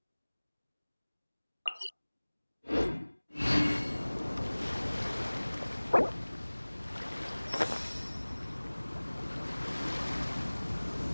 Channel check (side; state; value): both; inverted; correlation -1.00